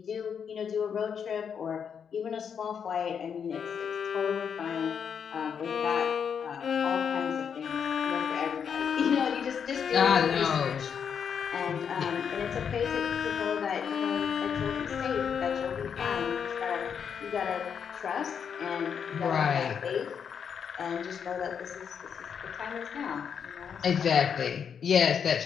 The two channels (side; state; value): right; quieter; 7.2 dB